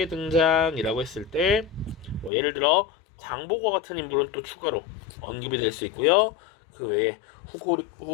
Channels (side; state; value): right; drops out; at 2.3 s